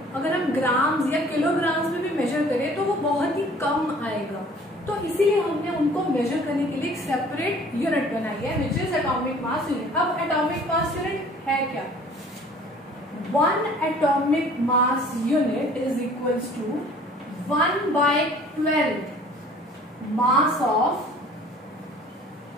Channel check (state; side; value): normal; both; correlation 0.51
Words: अगर हम ग्राम्स या किलोग्राम्स में भी मेजर करें तो वो बहुत ही कम आएगा. तो इसीलिए हमने उनको मेजर करने के लिए एक सेपरेट यूनिट बनाई है, विच इज एटॉमिक मास यूनिट. अब एटॉमिक मास यूनिट है क्या? 1 atomic mass unit is equals to 1/12 mass of